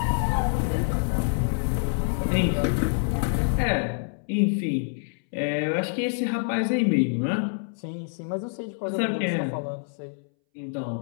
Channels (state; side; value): silent; right; 61 dB below the other